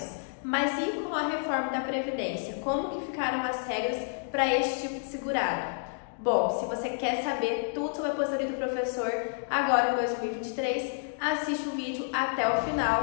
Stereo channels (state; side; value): silent; right; digital silence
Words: Mas e com a reforma da Previdência? Como que ficaram as regras para este tipo de segurado? Bom, se você quer saber tudo sobre a aposentadoria do professor agora em 2023, assiste o vídeo até o